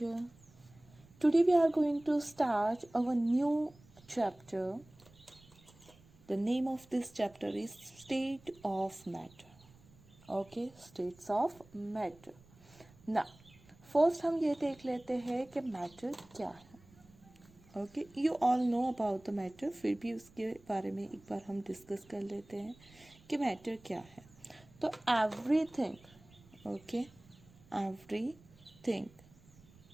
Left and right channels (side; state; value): right; noise; rumble, 26 dB below the sound